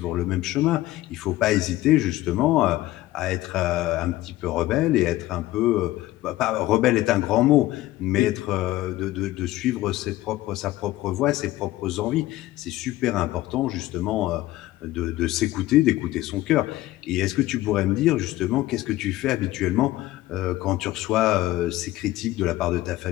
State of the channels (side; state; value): right; quieter; 16.5 dB